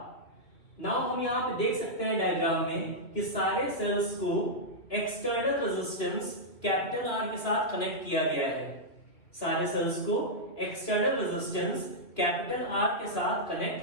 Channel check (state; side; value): late; right; 2.4 ms